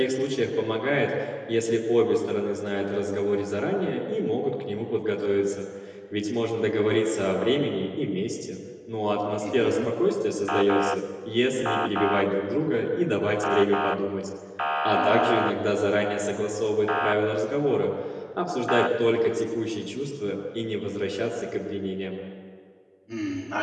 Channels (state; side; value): identical; both; correlation 1.00